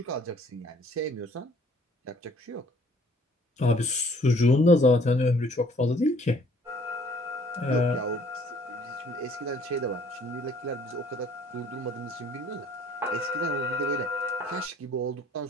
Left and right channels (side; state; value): both; normal; correlation 0.58